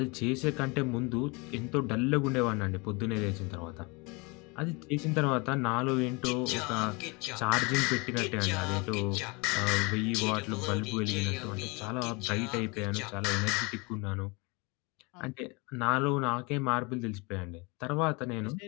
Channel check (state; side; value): quieter; right; 28.2 dB